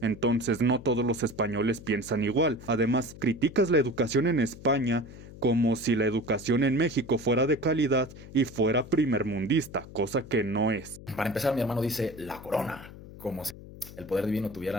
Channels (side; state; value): left; noise; hum, 16 dB below the sound